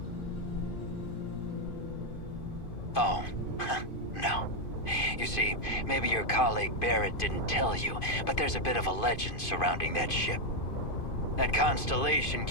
Oh, no. You see, maybe your colleague Barrett didn't tell you, but there's a bit of a legend surrounding that ship. That Constellation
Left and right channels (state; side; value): late; right; 2.5 ms